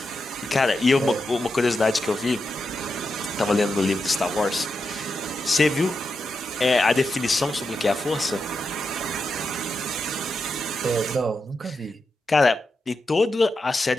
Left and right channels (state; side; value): normal; both; correlation 0.87